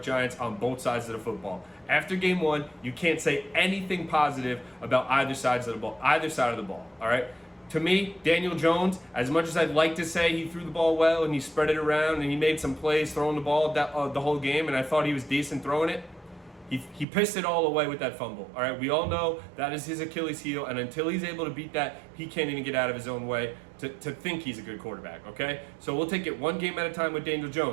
Giants on both sides of the football. After game one, you can't say anything positive about either side of the ball, all right? To me, Daniel Jones, as much as I'd like to say he threw the ball well and he spread it around and he made some plays throwing the ball the whole game, and I thought he was decent throwing it, he pissed it all away with that fumble. All right, we all know that is his Achilles heel, and until he's able to beat that, he can't even get out of his own way to think he's a good quarterback, okay? So we'll take it one game at a time with Daniel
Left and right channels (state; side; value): drops out; left; at 17.1 s